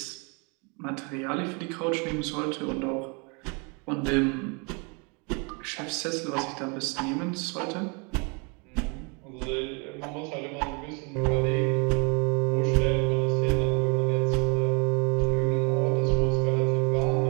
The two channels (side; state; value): left; quieter; 32.5 dB